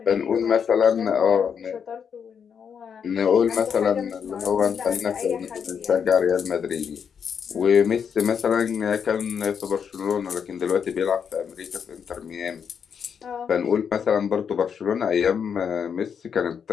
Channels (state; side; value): quieter; right; 7.1 dB